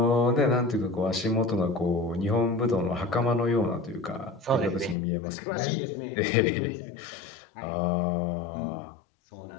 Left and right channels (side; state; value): right; drops out; at 5.0 s